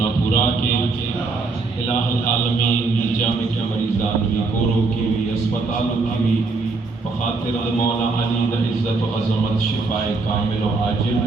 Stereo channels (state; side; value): quieter; left; 4.0 dB